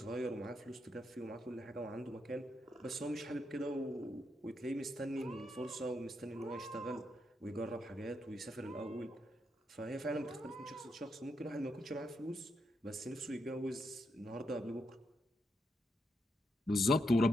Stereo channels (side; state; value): both; normal; correlation 0.81